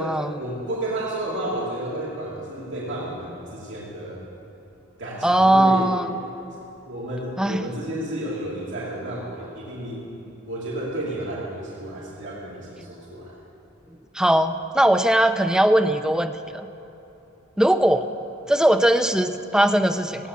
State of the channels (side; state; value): both; normal; correlation 0.81